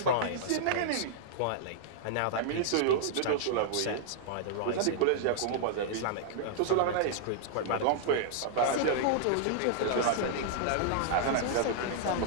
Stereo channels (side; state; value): both; different; correlation -0.01